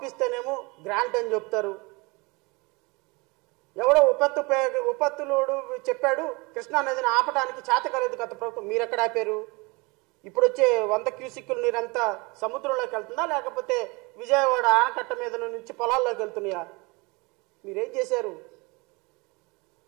గ్రాంట్ అని చెప్తారు. ఎవడో ఉపత్తులోడు చెప్పాడు కృష్ణానదిని ఆపడానికి చేతకాలేదు గత ప్రభుత్వం, మీరెక్కడ ఆపారు? ఇప్పుడు వచ్చే 100 క్యూసిక్కుల నీరంతా సముద్రంలోకి వెళ్తుందా, లేకపోతే విజయవాడ ఆనకట్ట మీద నుంచి పొలాల్లోకి వెళ్తున్నాయా? మీరేం చేశారు?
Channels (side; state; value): left; quieter; 26.8 dB